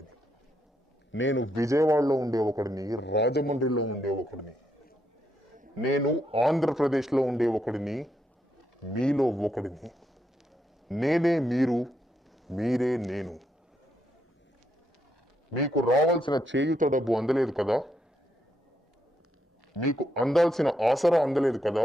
నేను విజయవాడలో ఉండే ఒకడిని, రాజమండ్రిలో ఉండే ఒకడిని, నేను ఆంధ్రప్రదేశ్లో ఉండే ఒకడిని, మీలో ఒకడిని. నేనే మీరు, మీరే నేను. మీకు రావాల్సిన చేయుత డబ్బు అందలేదు కదా? మీకు అందాల్సిన ఆసరా అందలేదు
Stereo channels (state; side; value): normal; both; correlation 0.79